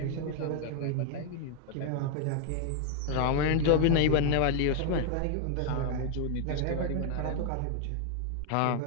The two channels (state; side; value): different; both; correlation 0.00